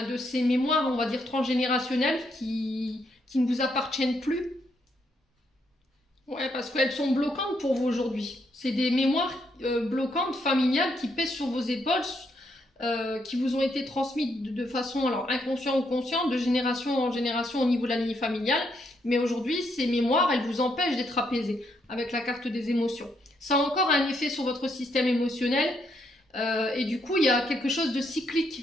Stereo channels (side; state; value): both; normal; correlation 0.76